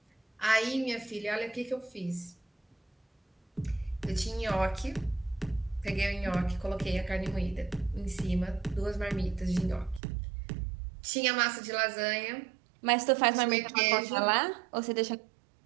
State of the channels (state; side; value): drops out; left; at 10.0 s